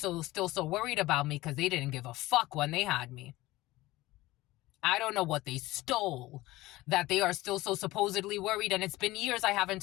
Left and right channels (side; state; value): right; quieter; 18.5 dB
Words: so worried about me, because they didn't give a fuck when they had me. I don't know what they stole that they are still so supposedly worried, and it's been years I haven't